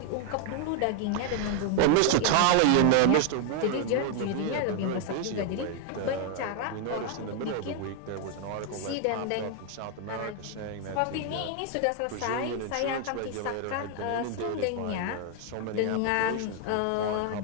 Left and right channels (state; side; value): different; both; correlation 0.00